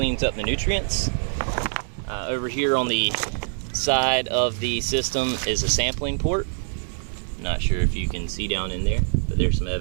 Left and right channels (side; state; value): left; silent; digital silence